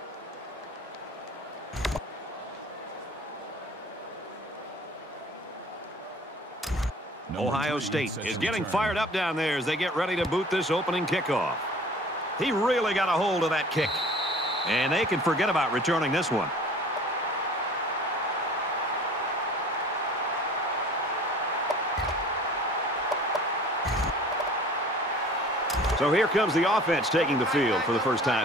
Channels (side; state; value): both; normal; correlation 0.46